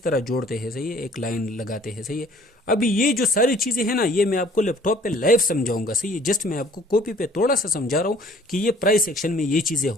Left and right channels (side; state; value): both; normal; correlation 0.55